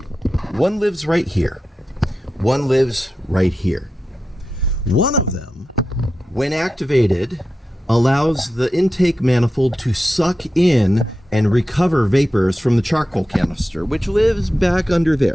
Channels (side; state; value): both; normal; correlation 0.91